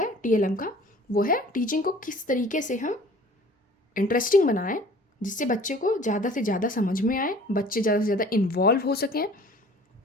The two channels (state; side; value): normal; both; correlation 0.49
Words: TLM का वो है टीचिंग को किस तरीके से हम इंटरेस्टिंग बनाएं जिससे बच्चे को ज़्यादा से ज़्यादा समझ में आए, बच्चे ज़्यादा से ज़्यादा इन्वॉल्व हो सकें,